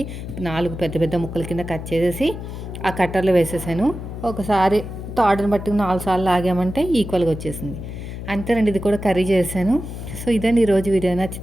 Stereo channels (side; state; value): left; noise; hum, 8 dB below the sound